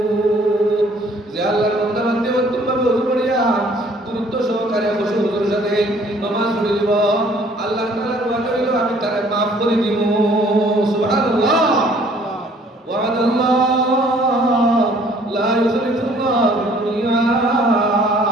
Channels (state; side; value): normal; both; correlation 0.58